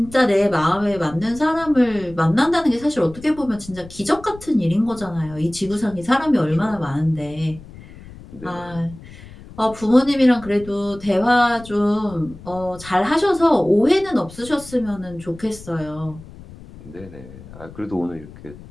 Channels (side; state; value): left; noise; rumble, 18 dB below the sound